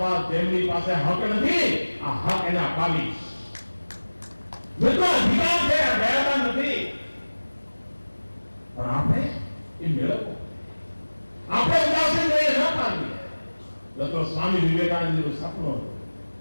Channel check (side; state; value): both; inverted; correlation -1.00